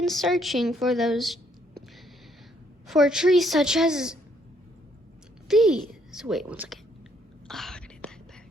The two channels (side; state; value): both; normal; correlation 0.69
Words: searching for trees such as these. Wait, one second. Oh, I gotta get that